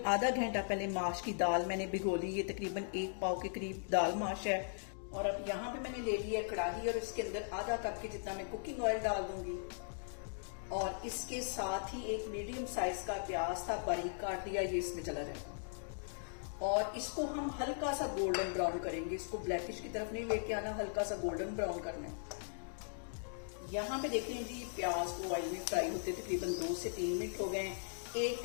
आधा घंटा पहले माश की दाल मैंने भिगो ली। ये तकरीबन 1 पाव के करीब दाल माश है। और अब यहाँ पे मैंने ले लिया कढ़ाई और इसके अंदर आधा कप के जितना मैं कुकिंग ऑयल डाल दूंगी। और इसके साथ ही एक मीडियम साइज का प्याज था, बारीक काट दिया, ये इसमें चला जाएगा। और इसको हम हल्का सा गोल्डन ब्राउन करेंगे। इसको ब्लैकिश की तरफ नहीं लेके आना, हल्का सा गोल्डन ब्राउन करना है। यहाँ पे देख लीजिए प्याज को ऑयल में फ्राई होते तकरीबन 2 से 3 मिनट हो गए। 1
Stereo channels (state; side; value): silent; right; digital silence